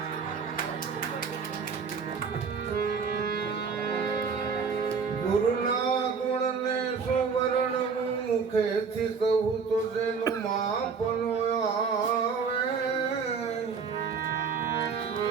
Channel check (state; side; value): quieter; left; 5.7 dB